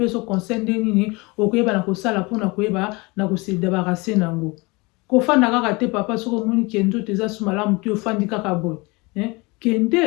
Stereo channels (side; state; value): right; quieter; 25.7 dB